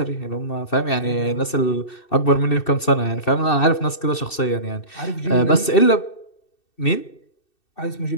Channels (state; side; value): late; right; 2.6 ms